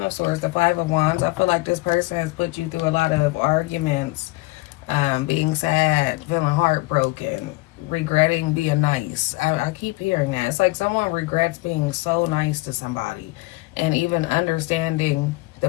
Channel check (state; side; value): quieter; right; 22.2 dB